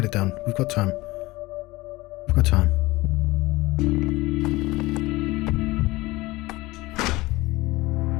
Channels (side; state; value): right; quieter; 20.3 dB